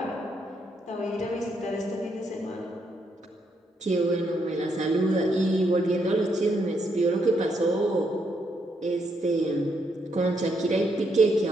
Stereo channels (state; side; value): normal; both; correlation 0.77